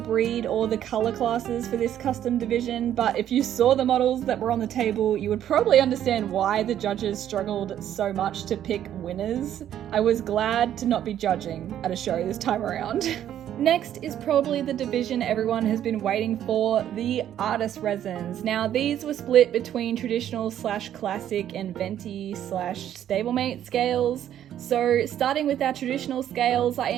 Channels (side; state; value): left; quieter; 10.8 dB